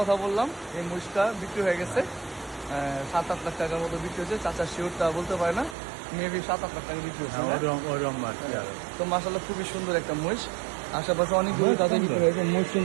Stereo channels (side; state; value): left; drops out; at 5.8 s